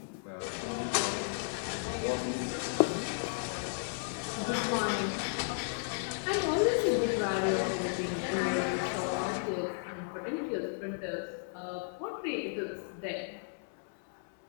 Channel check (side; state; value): right; silent; 55 dB below the other